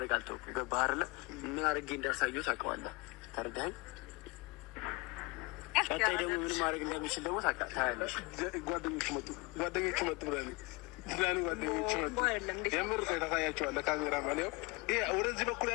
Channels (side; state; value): right; quieter; 26.8 dB